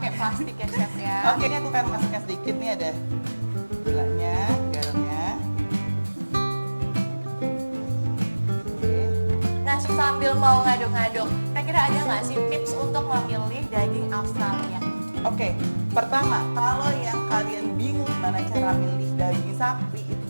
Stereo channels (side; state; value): both; inverted; correlation -1.00